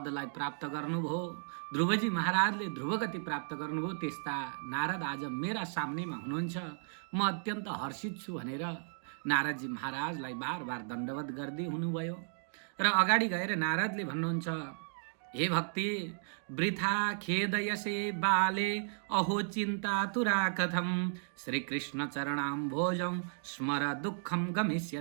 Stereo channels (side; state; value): left; silent; digital silence